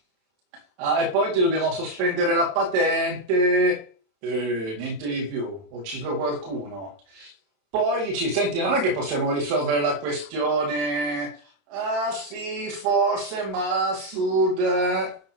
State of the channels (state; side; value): late; left; 27 ms